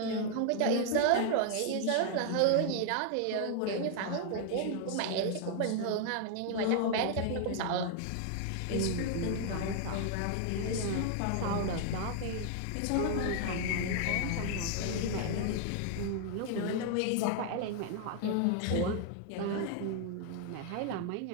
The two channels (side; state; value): both; different; correlation 0.00